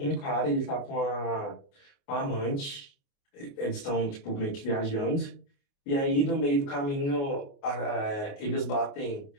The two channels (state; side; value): late; right; 29 ms